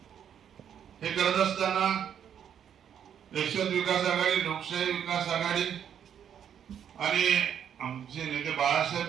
हे करत असताना यशवंत विकास आघाडी, लोकशाही विकास आघाडी आणि आमचे नेते बाळासाहेब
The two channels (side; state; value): left; quieter; 8.8 dB